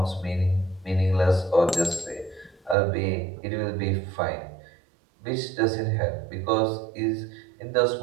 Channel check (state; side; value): drops out; left; at 2.8 s